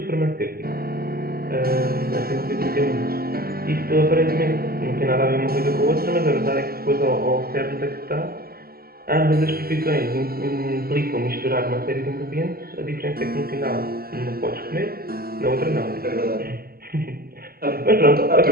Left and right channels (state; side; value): late; left; 0.44 ms